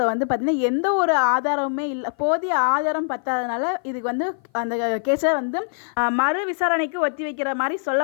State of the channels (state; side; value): silent; right; 56 dB below the other